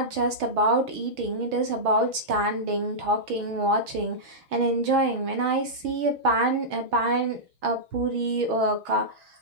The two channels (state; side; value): late; left; 6.3 ms